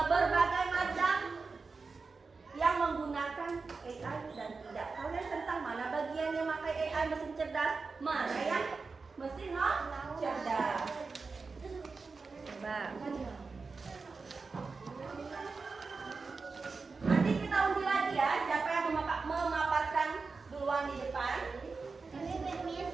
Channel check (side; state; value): left; quieter; 4.4 dB